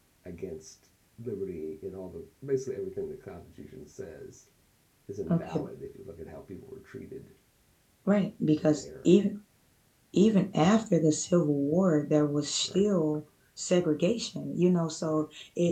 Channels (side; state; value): both; identical; correlation 1.00